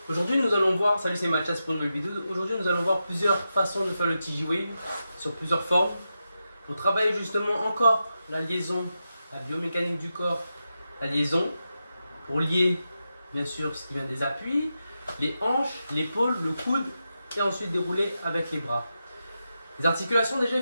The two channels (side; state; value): both; inverted; correlation -0.89